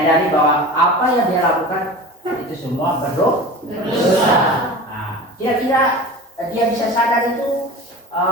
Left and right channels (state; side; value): normal; both; correlation 0.35